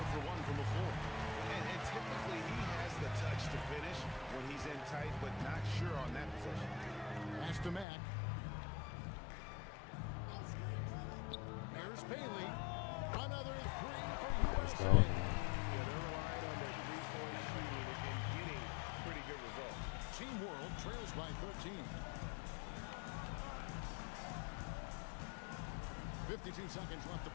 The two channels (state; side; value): drops out; right; at 7.9 s